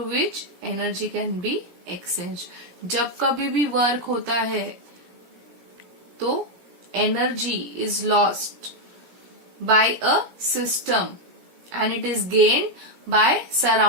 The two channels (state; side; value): late; left; 17 ms